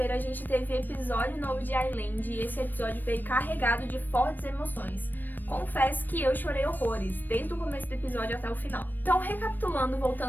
a gente teve episódio novo de Island e esse episódio veio carregado de fortes emoções. Confesso que eu chorei horrores, desde o começo do episódio até o final. Então, recapitulando,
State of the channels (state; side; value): late; right; 0.091 ms